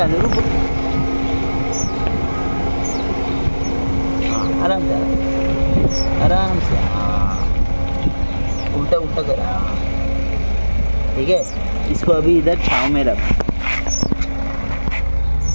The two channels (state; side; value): inverted; both; correlation -1.00